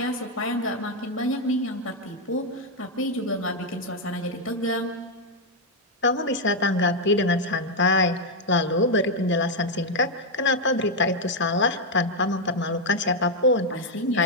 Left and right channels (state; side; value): normal; both; correlation 0.01